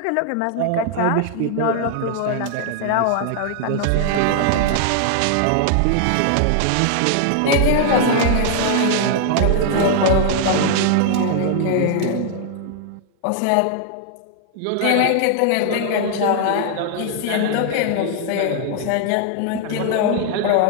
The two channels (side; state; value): both; different; correlation -0.01